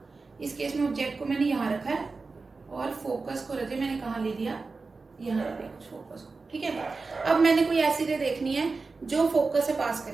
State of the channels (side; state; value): left; quieter; 4.1 dB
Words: इस केस में ऑब्जेक्ट को मैंने यहाँ रखा है और फोकस को रखे मैंने कहाँ ले लिया, यहाँ रख लिया कुछ फोकस को। ठीक है, अब मैंने कोई ऐसी रे देखनी है जो फोकस से पास